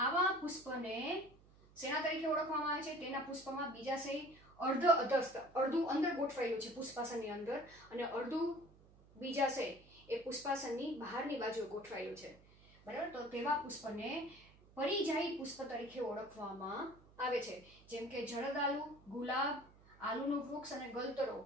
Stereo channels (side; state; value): right; noise; hum, 25 dB below the sound